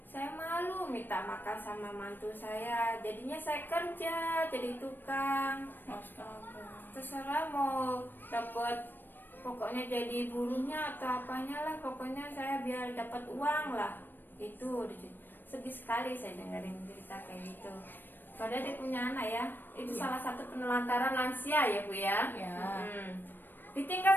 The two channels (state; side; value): late; right; 0.093 ms